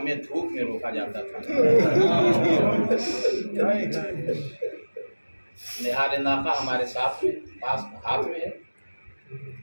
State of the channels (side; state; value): both; inverted; correlation -1.00